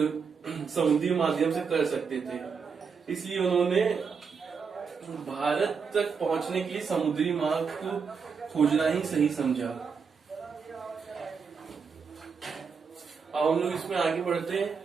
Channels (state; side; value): quieter; left; 5.8 dB